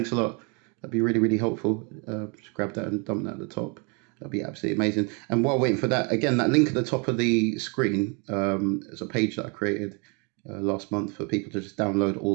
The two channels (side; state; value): left; quieter; 33.3 dB